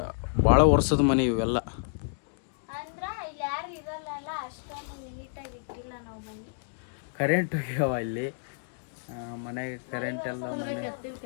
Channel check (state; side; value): silent; right; digital silence